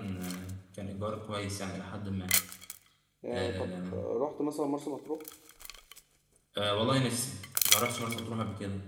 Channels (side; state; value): both; identical; correlation 1.00